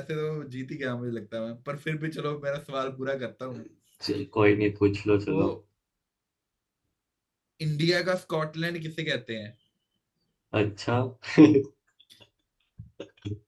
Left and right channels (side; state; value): both; identical; correlation 1.00